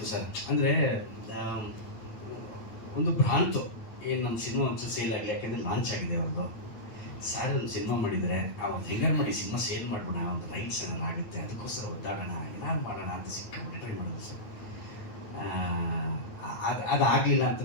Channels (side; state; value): right; late; 9.1 ms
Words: ಸರ್. ಅಂದ್ರೆ ಒಂದು ಭ್ರಾಂತು, ಏನು ನಮ್ಮ ಸಿನಿಮಾ ಒಂಚೂರು ಸೇಲ್ ಆಗಲಿ, ಯಾಕೆಂದ್ರೆ ಲಾಂಚ್ ಆಗಿದೆ ಅವ್ರದ್ದು. ಸರ್ ಒಂದು ಸಿನಿಮಾ ಮಾಡಿದರೆ ಅವ್ರು ಹೆಂಗಾರು ಮಾಡಿ ಸಿನಿಮಾ ಸೇಲ್ ಮಾಡ್ಬೋಣ, ಒಂದು ರೈಟ್ಸ್ ಏನಾರು ಆಗುತ್ತೆ, ಅದಕ್ಕೋಸ್ಕರ ಒದ್ದಾಡೋಣ, ಏನಾರು ಮಾಡೋಣ ಅಂತ ಸಿಕ್ಕಾಪಟ್ಟೆ ಟ್ರೈ ಮಾಡೋದು ಸರ್. ಅದಾಗಲಿಲ್ಲ